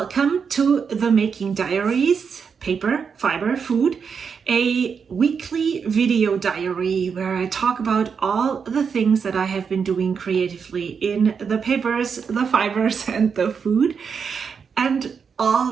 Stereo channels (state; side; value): quieter; left; 6.2 dB